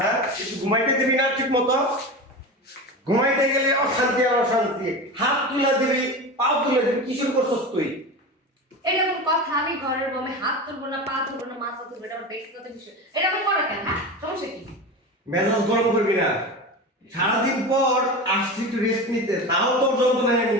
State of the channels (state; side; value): normal; both; correlation 0.26